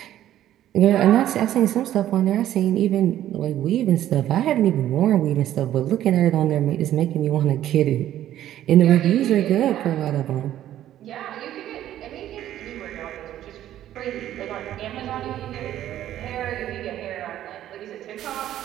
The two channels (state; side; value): quieter; left; 12.3 dB